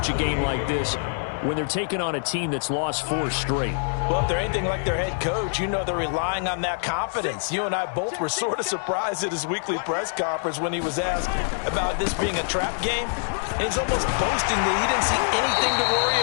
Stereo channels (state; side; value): silent; right; 62 dB below the other